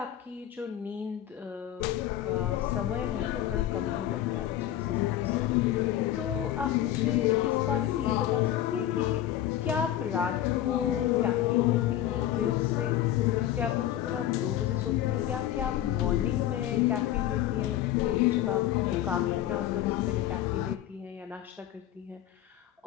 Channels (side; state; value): right; quieter; 12.4 dB